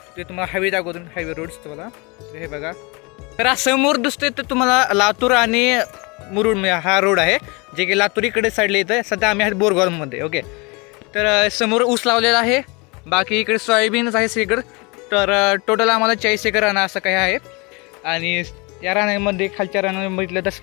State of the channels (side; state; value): right; quieter; 28.1 dB